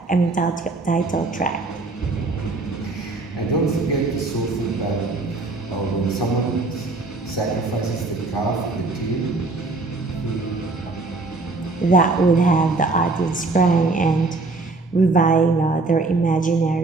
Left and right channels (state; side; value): quieter; left; 3.5 dB